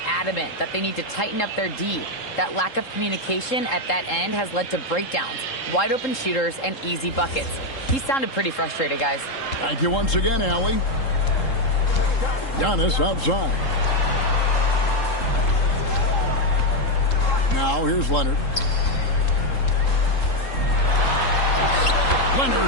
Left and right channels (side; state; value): right; late; 3.7 ms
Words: adamant that they need to tighten up their D. That lack of communication at that end has led to breakdowns, wide open shooters, and easy buckets. He sounded pretty frustrated, guys. Thank you once again, Allie. Giannis outside. Now here's Leonard.